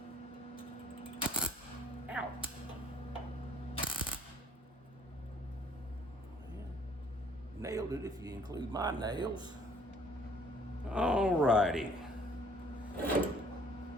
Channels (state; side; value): normal; both; correlation 0.58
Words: Ow. Nailed it if you include my nails. All righty.